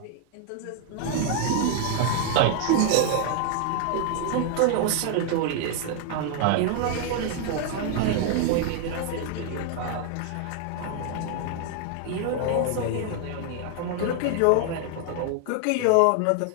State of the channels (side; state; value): both; different; correlation 0.00